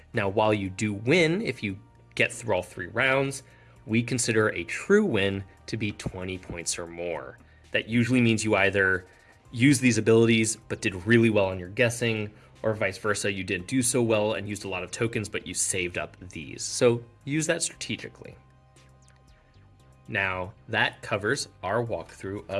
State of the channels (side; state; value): both; identical; correlation 1.00